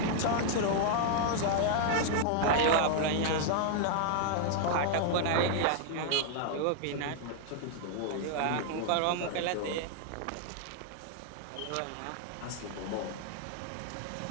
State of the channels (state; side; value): different; both; correlation -0.01